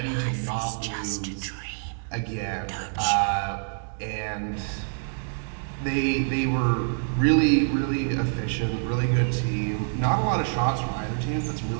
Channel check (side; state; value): left; silent; digital silence